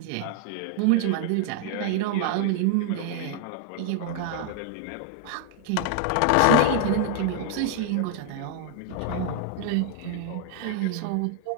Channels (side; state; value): both; different; correlation 0.00